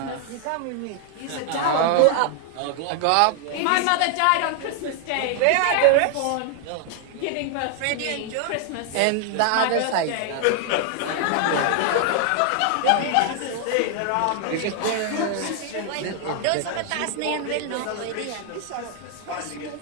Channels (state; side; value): different; both; correlation 0.00